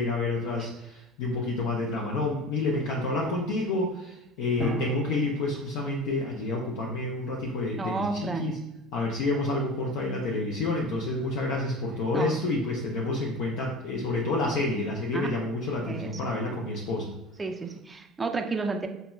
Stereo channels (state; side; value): normal; both; correlation 0.34